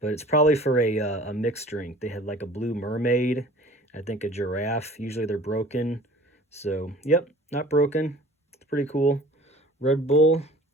it's probably for a mixed drink. They had like a blue mermaid. I think a giraffe. Usually they're broken. So, yep, not broken. It's pretty cool. Red Bull.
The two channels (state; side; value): normal; both; correlation 0.46